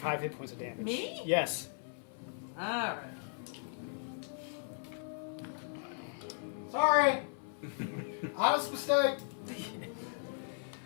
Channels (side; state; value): right; silent; 53 dB below the other